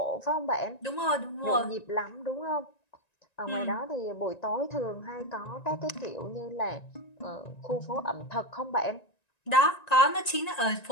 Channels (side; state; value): right; late; 1.9 ms